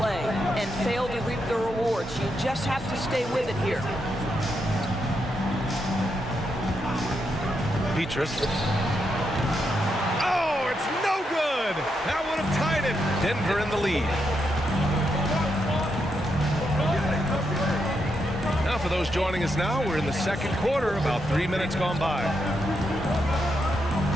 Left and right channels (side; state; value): both; normal; correlation 0.82